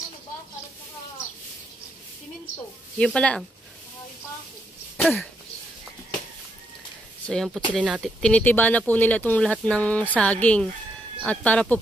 Yun pala ang. So yan po sila natin. Tinitiba na po nila itong lahat ng saging. At para po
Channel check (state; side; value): normal; both; correlation 0.78